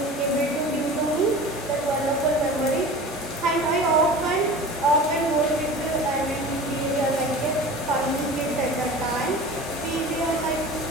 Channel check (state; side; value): normal; both; correlation 0.38